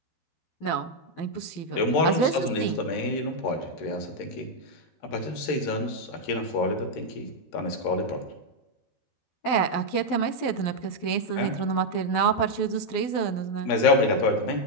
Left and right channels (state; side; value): late; right; 12 ms